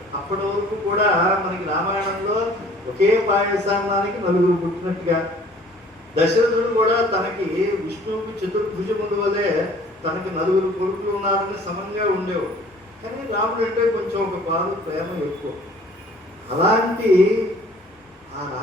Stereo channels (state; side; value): normal; both; correlation 0.53